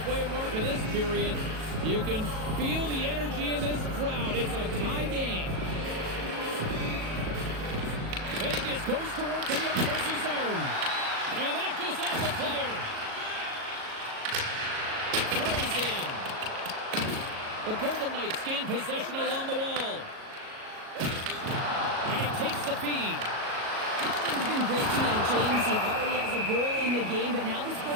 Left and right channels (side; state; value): left; late; 37 ms